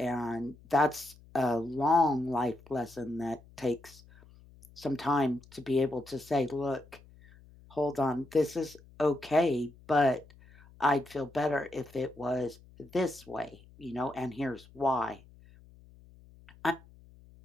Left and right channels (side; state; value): left; noise; hum, 24 dB below the sound